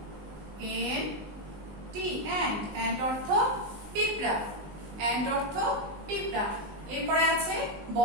ANT অ্যান্ট, অ্যান্ট অর্থ পিঁপড়া, অ্যান্ট অর্থ পিঁপড়া। এরপরে আছে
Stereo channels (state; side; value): late; left; 20 ms